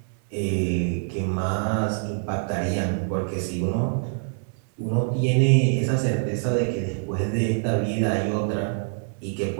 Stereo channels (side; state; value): left; silent; 62 dB below the other